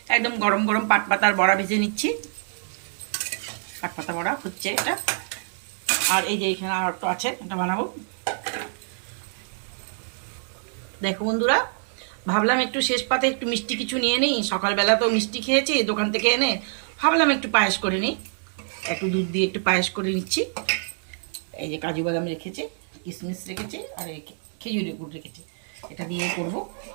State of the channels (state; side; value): silent; left; digital silence